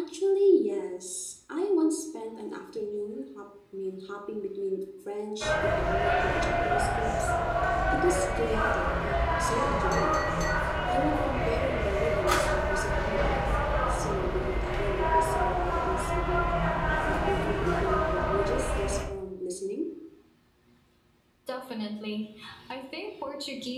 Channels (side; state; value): both; identical; correlation 1.00